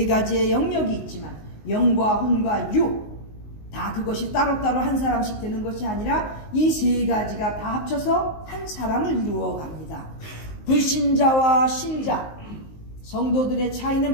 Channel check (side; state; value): right; late; 19 ms